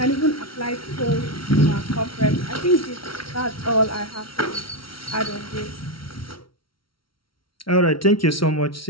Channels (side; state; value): right; late; 0.74 ms